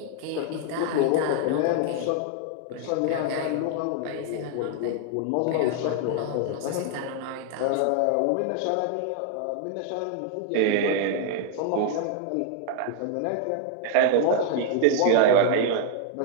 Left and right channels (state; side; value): different; both; correlation 0.00